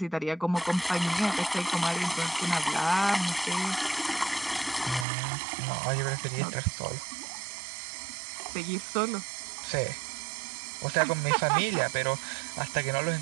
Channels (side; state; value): left; drops out; at 5.1 s